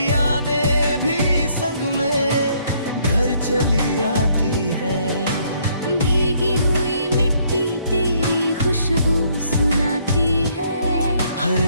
यादें भी संग मेरे घर चली आती है। भीगी हुई मिट्टी तेरी खुशबू सुनाती है।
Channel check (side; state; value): both; inverted; correlation -0.67